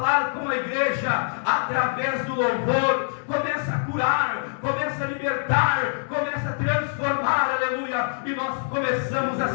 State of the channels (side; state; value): right; silent; digital silence